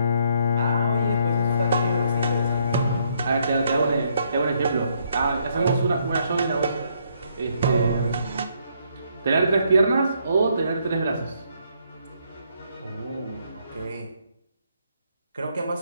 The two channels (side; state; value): both; inverted; correlation -0.71